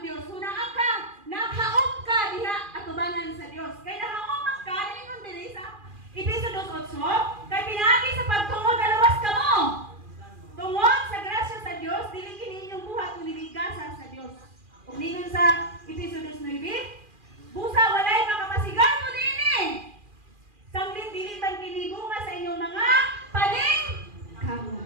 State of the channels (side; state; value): left; late; 2.4 ms